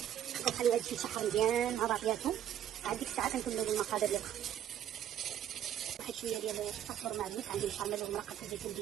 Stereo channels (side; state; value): left; quieter; 10.7 dB